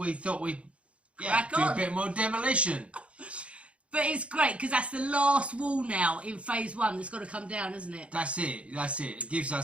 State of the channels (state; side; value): late; left; 0.061 ms